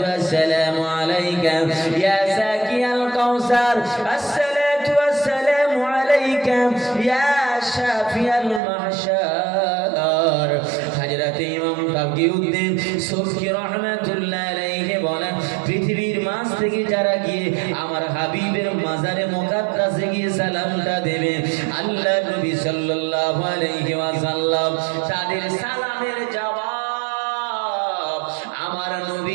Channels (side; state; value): left; drops out; at 8.6 s